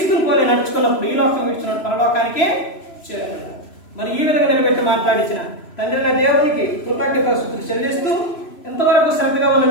పోలే నడుచుకున్నప్పుడు ఈ లోకం విడిచిన పరలోకానికి చేరుకుంటాం. మరి ఈ విధంగా నిలబెట్టి మాట్లాడించిన తండ్రి దేవునికి కృతజ్ఞతాస్తుతులు చెల్లిస్తూ, ఎంతవరకు శ్రద్ధగా ఉన్న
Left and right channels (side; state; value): right; late; 3.0 ms